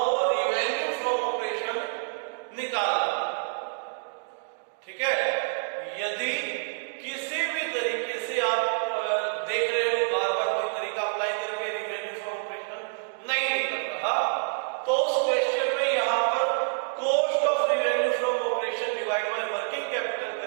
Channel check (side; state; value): left; silent; digital silence